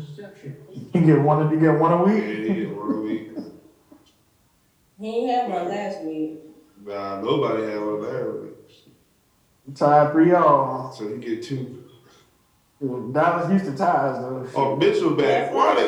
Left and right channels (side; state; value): both; identical; correlation 1.00